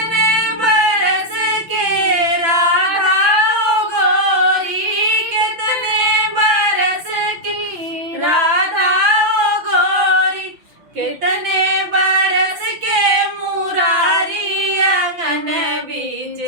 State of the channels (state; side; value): late; left; 6.0 ms